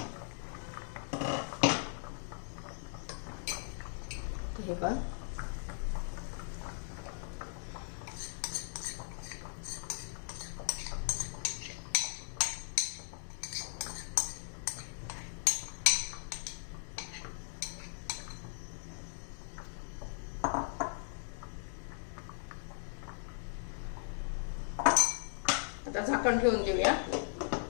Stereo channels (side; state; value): right; silent; digital silence